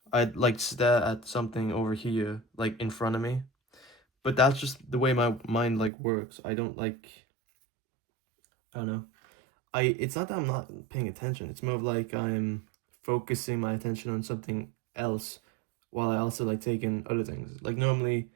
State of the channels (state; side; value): drops out; left; at 5.9 s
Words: I'd, like, stare at something over here, like, in front of me. But that's just the way my mind, like, works. I don't, like, I don't know. It's not that I'm not paying attention. It's more of like I'm focusing my attention on something else while I also like take in other things. Like normally